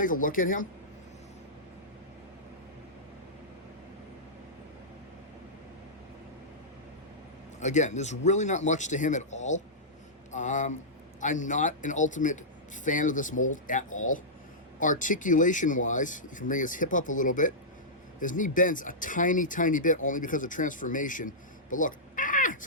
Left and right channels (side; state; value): both; normal; correlation -0.14